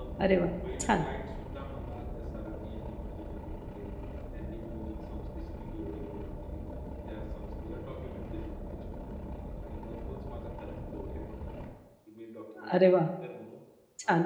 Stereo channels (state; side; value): identical; both; correlation 1.00